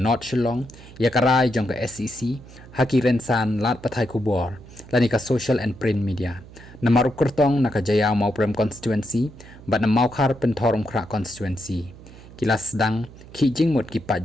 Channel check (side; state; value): right; noise; hum, 19 dB below the sound